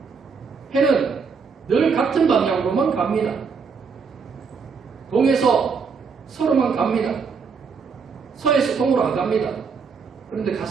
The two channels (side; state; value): left; quieter; 5.5 dB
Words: 해는 늘 같은 방향으로만 갑니다. 동에서 서로만 갑니다. 서에서 동으로 안 갑니다. 그런데